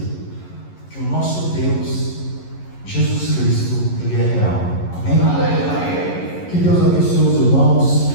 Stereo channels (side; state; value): right; late; 11 ms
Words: que o nosso Deus, Jesus Cristo, Ele é real. Amém? Que Deus abençoe os irmãos